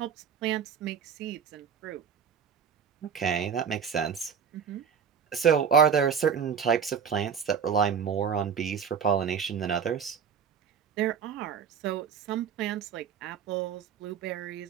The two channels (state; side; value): quieter; left; 7.2 dB